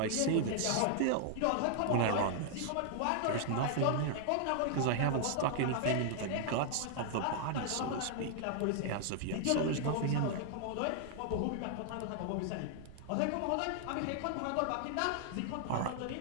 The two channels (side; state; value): both; different; correlation -0.01